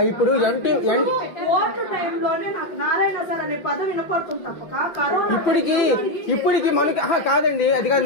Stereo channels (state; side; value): late; right; 6.0 ms